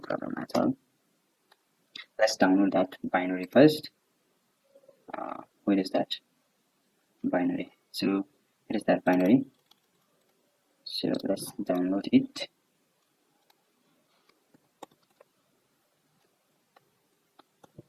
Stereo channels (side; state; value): both; identical; correlation 1.00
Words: at all. Let's download that binary first. Where is that binary? So it is that binary. So let's download it.